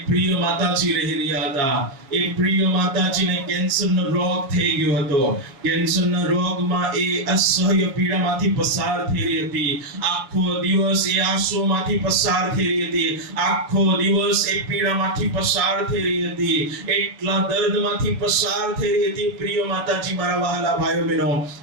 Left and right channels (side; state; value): left; late; 7.3 ms